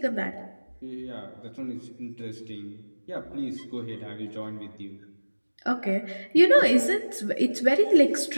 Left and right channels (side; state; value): both; inverted; correlation -1.00